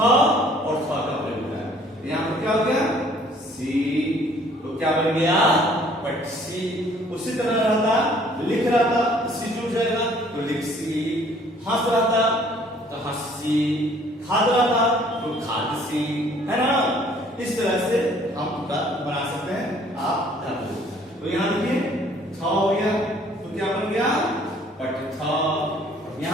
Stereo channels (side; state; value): both; normal; correlation 0.58